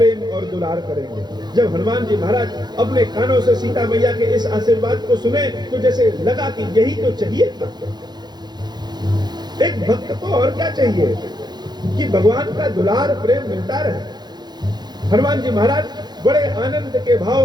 और दुलार करेंगे। जब हनुमान जी महाराज अपने कानों से सीता मैया के इस आशीर्वाद को सुने, तो जैसे लगा कि यही तो चाहिए था। एक भक्त को और क्या चाहिए कि भगवान का दुलार प्रेम मिलता रहे। हनुमान जी महाराज बड़े आनंद के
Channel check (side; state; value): left; late; 0.20 ms